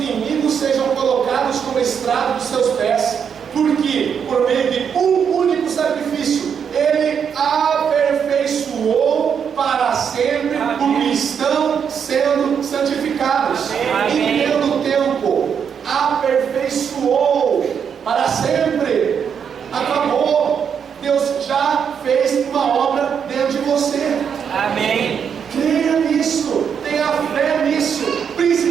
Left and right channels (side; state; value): left; quieter; 7.3 dB